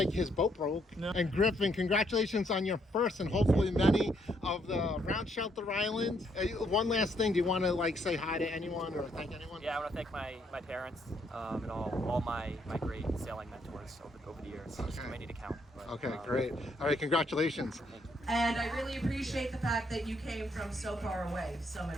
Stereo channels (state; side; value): normal; both; correlation 0.72